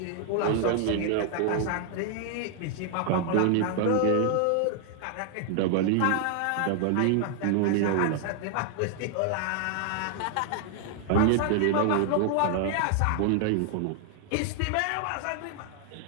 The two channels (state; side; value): different; both; correlation 0.00